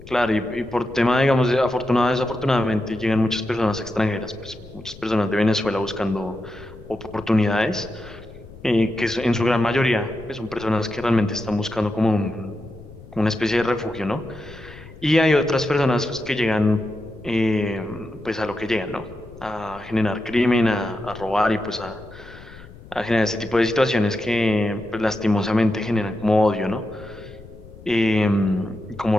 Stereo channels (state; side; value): noise; left; rumble, 19 dB below the sound